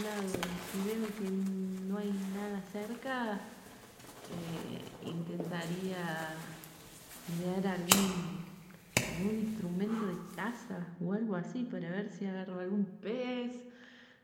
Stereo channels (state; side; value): identical; both; correlation 1.00